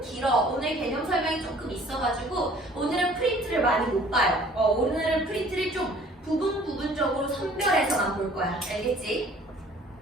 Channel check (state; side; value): normal; both; correlation 0.53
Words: 길어. 오늘 개념 설명이 조금 있어가지고 오늘은 프린트를 많이 못 봐요. 오늘은 프린트를 좀 부분적으로 선별해서만 볼 거야. 알겠지?